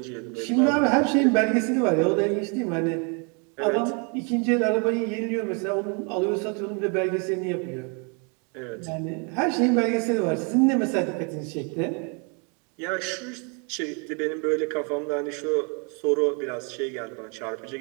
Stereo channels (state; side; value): quieter; left; 35.5 dB